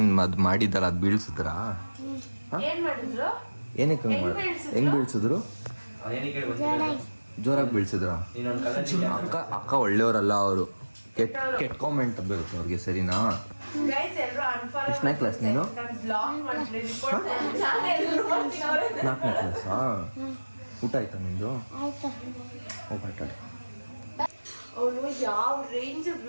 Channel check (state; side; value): inverted; both; correlation -1.00